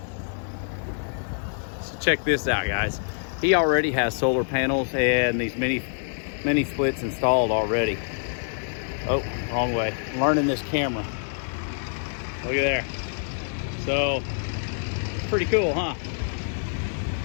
So check this out, guys. He already has solar panels and these mini splits installed already. Oh, wrong way. I'm learning this camera. Look at there. So, pretty cool, huh?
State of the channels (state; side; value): silent; right; digital silence